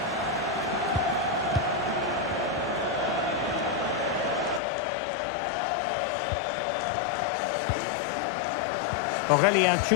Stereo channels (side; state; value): right; drops out; at 4.6 s